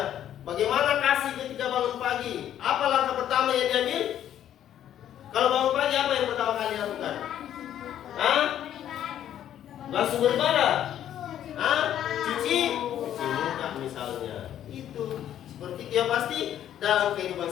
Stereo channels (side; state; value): right; quieter; 10.9 dB